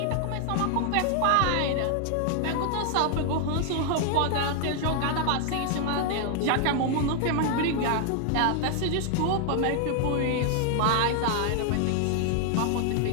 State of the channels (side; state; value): both; different; correlation 0.00